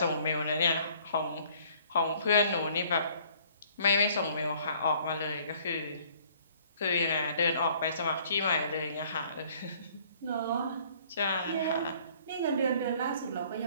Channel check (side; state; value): both; inverted; correlation -0.57